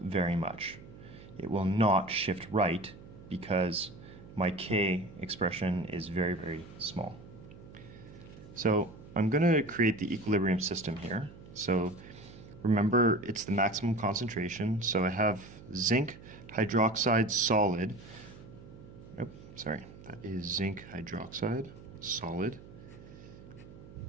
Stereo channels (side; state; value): right; noise; hum, 18 dB below the sound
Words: much. It will not shift right because my K expression is very, very small. So I'm going to create the equilibrium system here. So remember, it's the maximum concentration. So I have zinc hydroxide solid. Oh, sorry, that is zinc hydroxide solid.